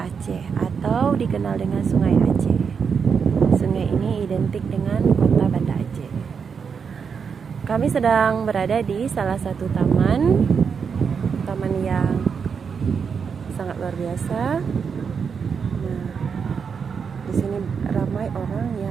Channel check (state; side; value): quieter; left; 6.2 dB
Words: atau dikenal dengan Sungai Aceh. Sungai ini identik dengan kota Banda Aceh. Kami sedang berada di salah satu taman yang sangat luar biasa. Di sini ramai orang